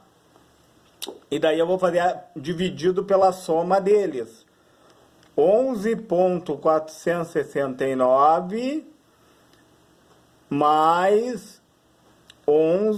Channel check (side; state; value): both; identical; correlation 1.00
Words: E daí eu vou fazer dividido pela soma deles. 11,469 mais